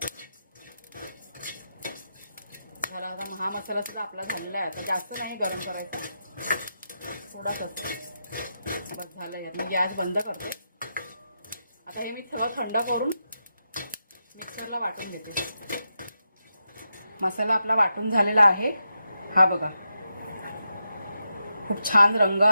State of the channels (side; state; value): both; inverted; correlation -0.86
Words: झाला. आता हा मसाला सुद्धा आपला झालेला आहे. आता जास्त नाही गरम करायचा, थोडाच असतो. बस झालं. मी गॅस बंद करते. आता हे मी सगळं थंड करून मिक्सरला वाटून घेते. मसाला आपला वाटून झालेला आहे. हा बघा, खूप छान रंग